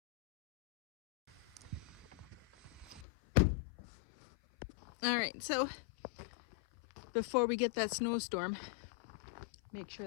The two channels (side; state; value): right; drops out; at 3.1 s